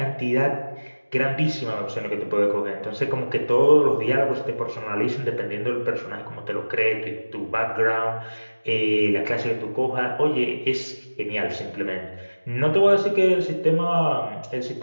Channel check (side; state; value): both; inverted; correlation -1.00